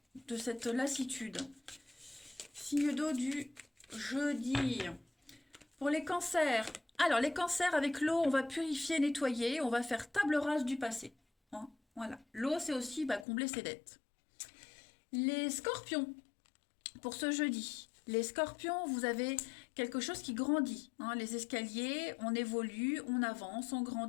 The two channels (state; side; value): drops out; right; at 13.2 s